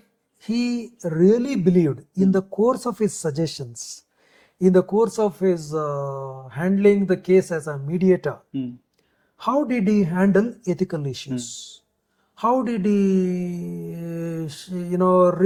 he really believed in the course of his suggestions, in the course of his handling the case as a mediator, how did he handle ethical issues? How did he,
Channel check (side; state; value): both; identical; correlation 1.00